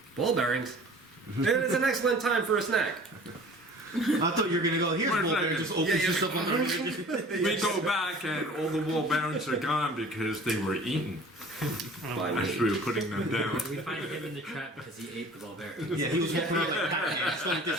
Ball bearings. It is an excellent time for a snack. I thought you were gonna go. Here's Wait, ball bearing. Just opens yeah. yourself up. We go back and all the wall bearings are gone because they were eaten as we were putting them down. We find him in the trap because he ate the ball bearing. Yeah, he was walking around like Paladin, just like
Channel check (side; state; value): both; normal; correlation 0.46